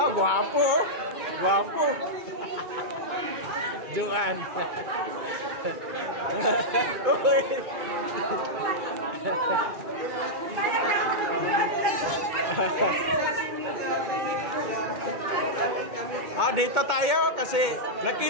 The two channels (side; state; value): left; late; 2.4 ms